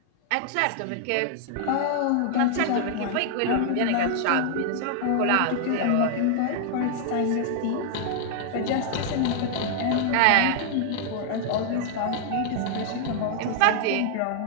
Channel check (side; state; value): both; different; correlation -0.01